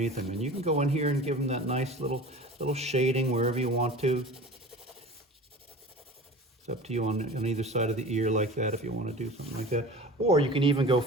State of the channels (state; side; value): normal; both; correlation 0.38